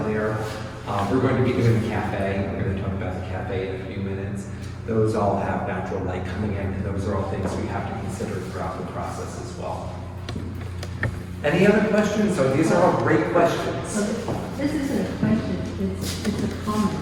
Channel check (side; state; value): both; identical; correlation 1.00